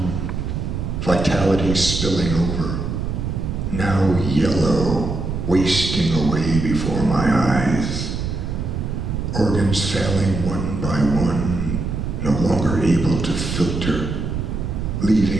vitality spilling over, now yellow, wasting away before my eyes, organs failing one by one, no longer able to filter,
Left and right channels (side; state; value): right; noise; rumble, 3 dB below the sound